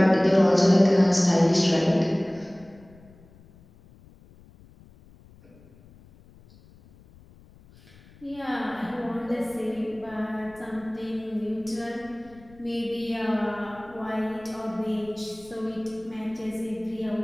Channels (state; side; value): noise; left; rumble, 25 dB below the sound